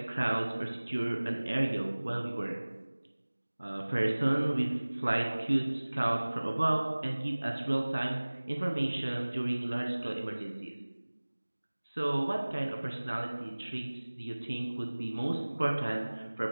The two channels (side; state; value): both; inverted; correlation -1.00